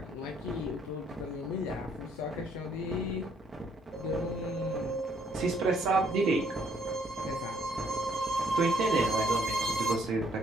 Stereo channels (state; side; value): normal; both; correlation 0.67